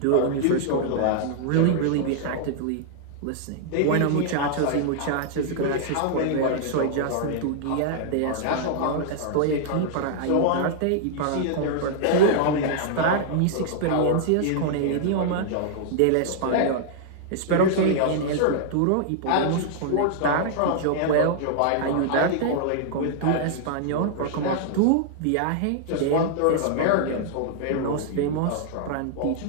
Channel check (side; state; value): both; different; correlation -0.01